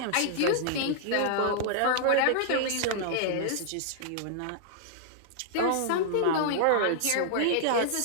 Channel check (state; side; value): different; both; correlation -0.01